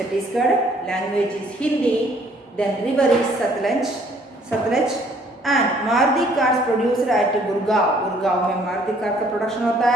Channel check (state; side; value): normal; both; correlation 0.61